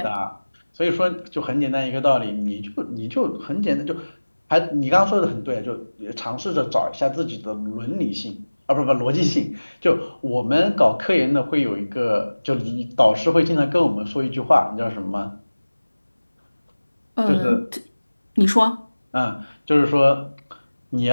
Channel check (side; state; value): both; inverted; correlation -1.00